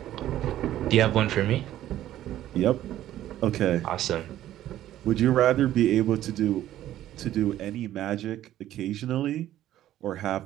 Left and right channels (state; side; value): quieter; left; 13.0 dB